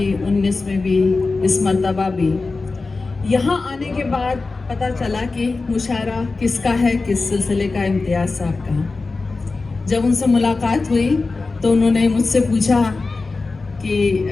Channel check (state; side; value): quieter; right; 3.8 dB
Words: 19 میں بھی، اس مرتبہ بھی۔ یہاں آنے کے بعد پتہ چلا کہ مشاعرہ کس کا ہے، کس سلسلے کا، امتیاز صاحب کا۔ جب ان سے ملاقات ہوئی تو انہوں نے مجھ سے پوچھا کہ